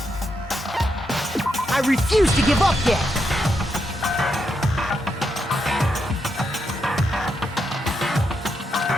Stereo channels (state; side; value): normal; both; correlation 0.82